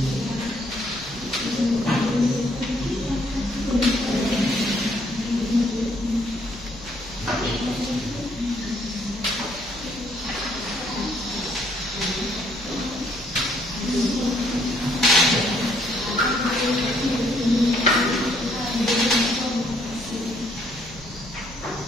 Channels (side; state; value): left; noise; hum, 19 dB below the sound